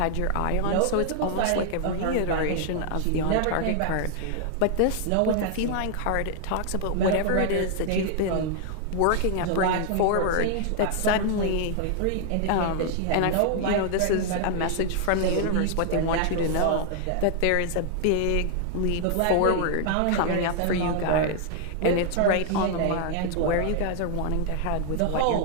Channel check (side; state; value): both; different; correlation 0.00